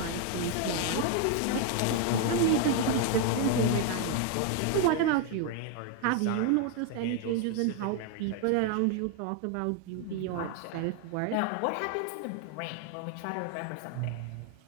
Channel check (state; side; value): different; both; correlation 0.01